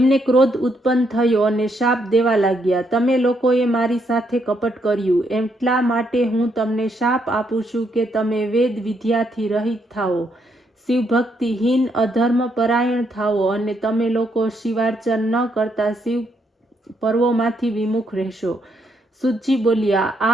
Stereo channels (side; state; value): both; normal; correlation 0.75